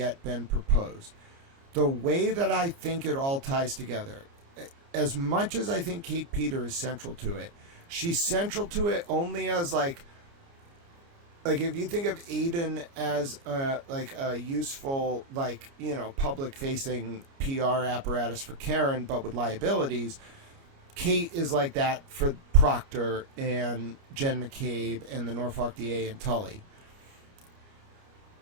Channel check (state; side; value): late; left; 29 ms